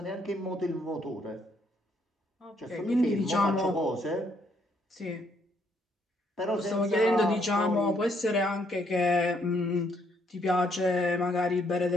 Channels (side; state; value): both; normal; correlation 0.71